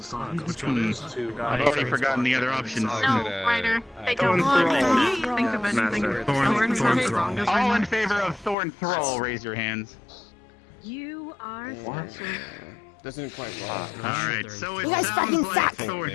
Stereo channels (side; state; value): right; drops out; at 8.6 s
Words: I've already forgotten the other options. No, Ryder. They Thorn don't Thrall. think of anything. Thorn Thrall. All in favor of Thorn Thrall, raise your hands. You are Doesn't quite Alright, so it You guys fucking